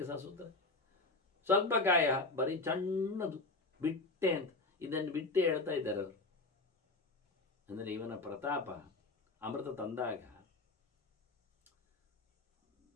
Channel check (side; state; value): right; quieter; 3.2 dB